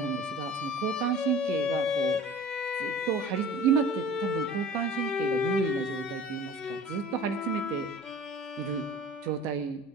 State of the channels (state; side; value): normal; both; correlation 0.43